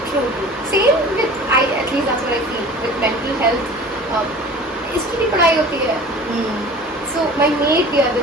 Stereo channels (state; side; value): normal; both; correlation 0.42